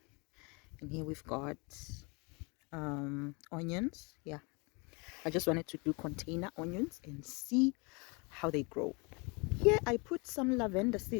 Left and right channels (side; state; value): right; quieter; 30.4 dB